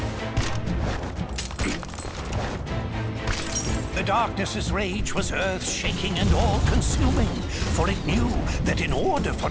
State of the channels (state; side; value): identical; both; correlation 1.00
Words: The darkness's rage was earth-shaking and all-consuming, for it knew that in order for